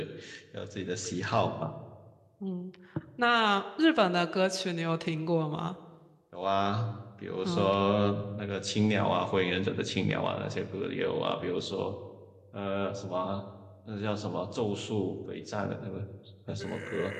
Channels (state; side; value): identical; both; correlation 1.00